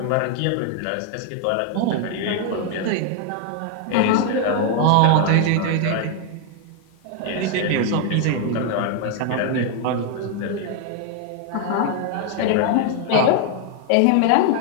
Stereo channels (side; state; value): both; different; correlation 0.00